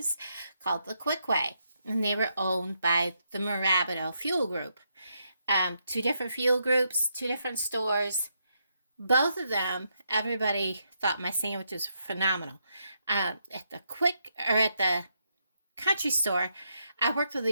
called the Quickway, and they were owned by the Marabito Fuel Group. Two different fuel groups, two different stores. Both of them, everybody thought my sandwiches were phenomenal. At the Country Store, I worked with a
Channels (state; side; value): inverted; both; correlation -0.79